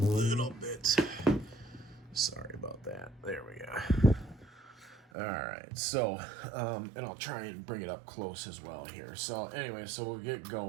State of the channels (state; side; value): drops out; left; at 5.1 s